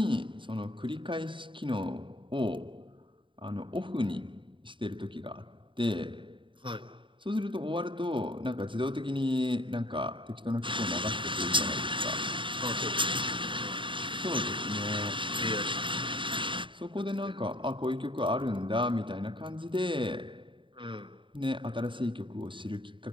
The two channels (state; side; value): late; left; 0.24 ms